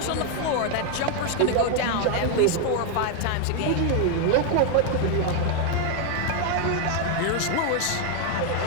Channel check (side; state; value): both; different; correlation 0.01